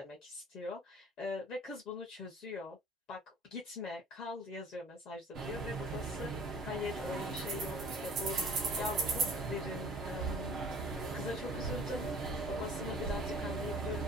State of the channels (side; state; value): both; normal; correlation 0.49